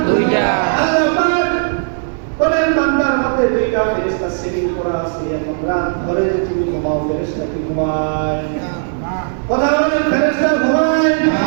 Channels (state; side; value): silent; left; digital silence